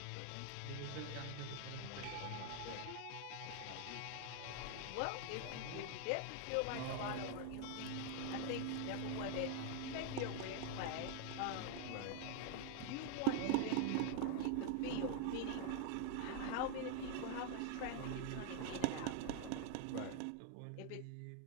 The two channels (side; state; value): both; different; correlation 0.00